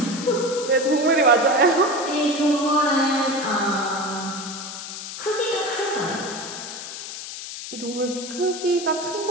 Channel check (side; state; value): left; noise; hiss, 9 dB below the sound